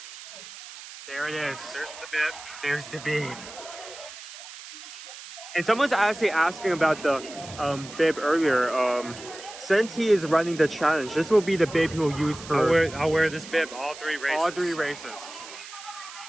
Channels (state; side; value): noise; right; hiss, 14 dB below the sound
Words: There it is. There's the bib. There's the bib. And someone's actually asking about the bib earlier. Since he is running the challenge, this will be the bib he will use for... I'll wear this bib all 3 races. All 3 races.